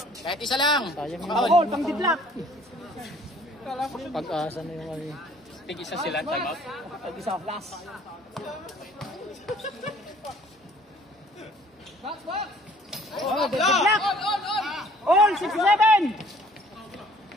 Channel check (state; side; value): normal; both; correlation 0.56